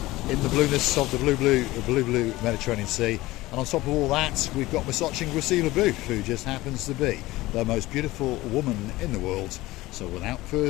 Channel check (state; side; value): quieter; right; 18.5 dB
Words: in the blueness of the blue Mediterranean Sea. And on top of all that, we've got Miss Gracila, who just happens to be the most beautiful woman in the world. So without